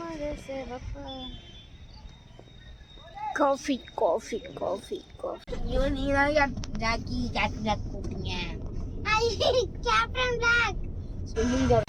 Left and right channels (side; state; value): both; identical; correlation 1.00